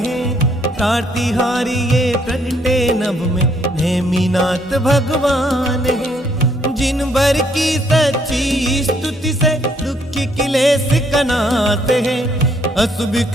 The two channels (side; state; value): both; normal; correlation 0.68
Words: प्रातिहारी ये प्रगटे नभ में नेमिनाथ भगवान है। जिन भर की सच्ची स्तुति से दुख की क्लेश का नाश है। अशुभ